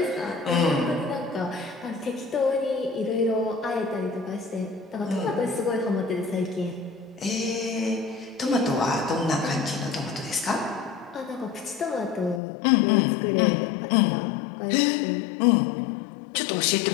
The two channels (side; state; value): right; drops out; at 12.4 s